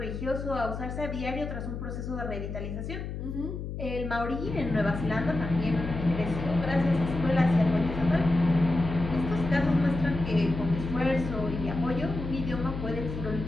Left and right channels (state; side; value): noise; left; hum, 6 dB below the sound